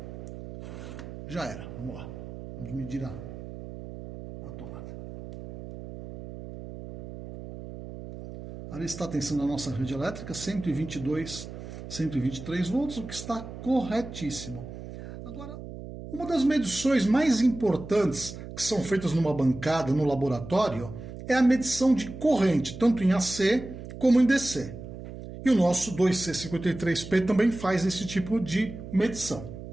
já era. Vamos lá. Vamos medir a tomada. Ali está a tensão da nossa rede elétrica, 122, 123 volts, o que está corretíssimo. Agora, uma das medições mais importantes que são feitas numa bancada, no laboratório, é a medição de corrente, tanto em AC como em DC. E o nosso 2C53P também faz esse tipo de medição.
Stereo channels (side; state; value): right; noise; hum, 11 dB below the sound